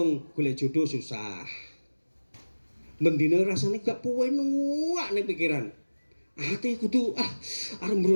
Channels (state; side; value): inverted; both; correlation -1.00